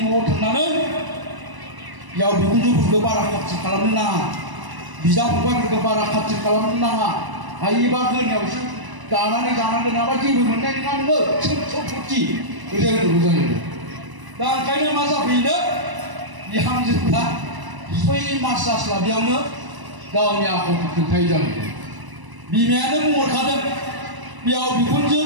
न'आव थांनानै बिहाव बिखुनजोफोरखौ बारा खाथि खालामनो नाङा। बिदा फंबायफोरखौ बारा खाथि खालामनो नाङा। हायोबा गोरनायावसो दानानै जानांगोन नङाबा जेबो मोननाय नङा नोङो सम्पति बेबायदि जायो। दा ओंखायनो मा जाफैनो बिहामजोफ्रा 6 मास जास्लाबियावनो गावनि आखलखौ खोन्थायै जाहैदों। बिमायानो बुंहरखादों बिहाव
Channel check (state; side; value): late; left; 1.0 ms